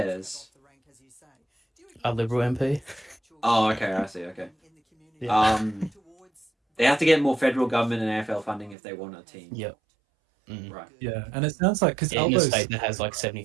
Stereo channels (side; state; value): left; drops out; at 8.8 s